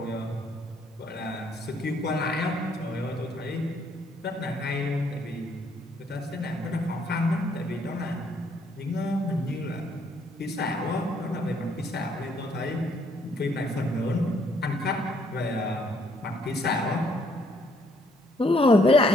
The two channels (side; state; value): both; normal; correlation 0.68